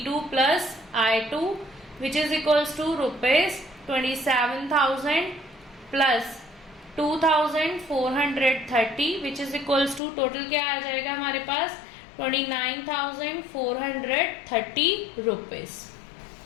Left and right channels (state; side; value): drops out; right; at 10.0 s